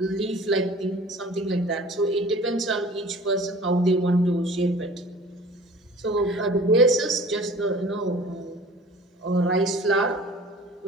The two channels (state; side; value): normal; both; correlation 0.46